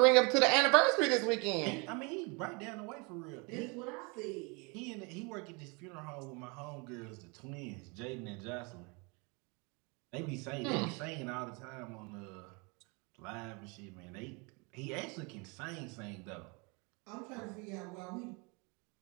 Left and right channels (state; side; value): quieter; left; 30.6 dB